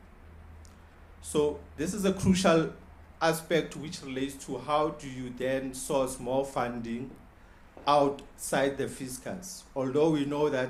So this is a crucial aspect which relates to how do you then source more funding outside the fiscus. Although we know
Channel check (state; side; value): identical; both; correlation 1.00